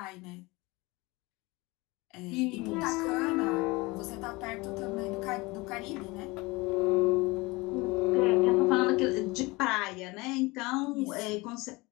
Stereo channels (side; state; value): right; quieter; 23.5 dB